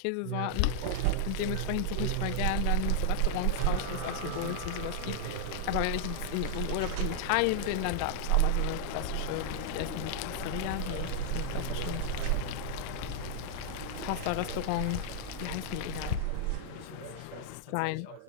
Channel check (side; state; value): both; different; correlation -0.01